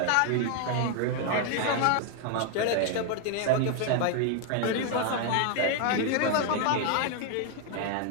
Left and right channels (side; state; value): both; different; correlation 0.00